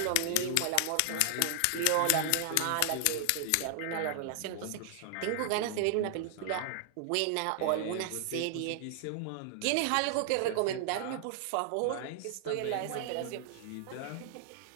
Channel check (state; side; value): different; both; correlation -0.01